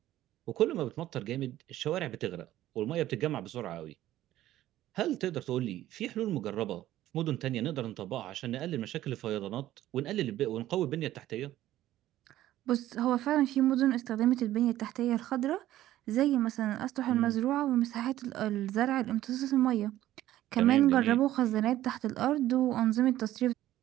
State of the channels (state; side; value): quieter; left; 14.0 dB